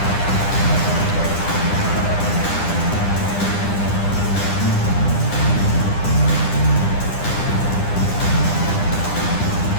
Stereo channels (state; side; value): late; right; 9.9 ms